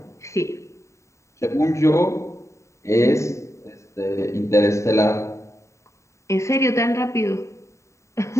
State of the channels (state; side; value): late; right; 0.14 ms